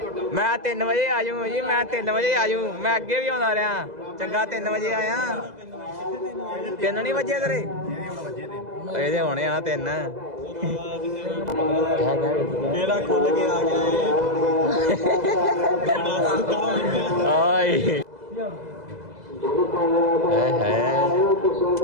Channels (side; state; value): left; late; 2.0 ms